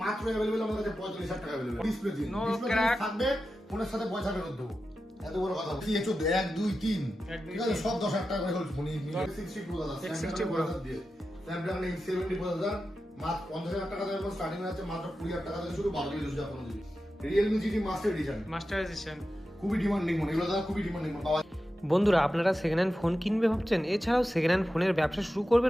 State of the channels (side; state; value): both; normal; correlation 0.91